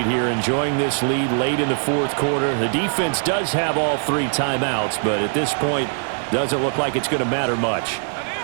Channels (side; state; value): left; silent; 60 dB below the other